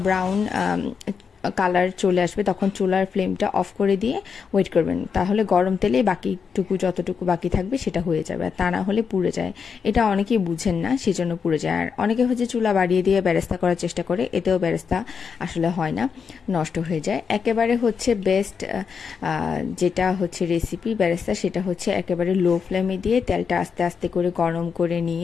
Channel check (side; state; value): right; quieter; 6.1 dB